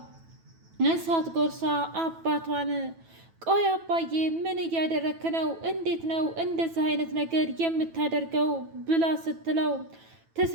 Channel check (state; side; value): late; left; 9.1 ms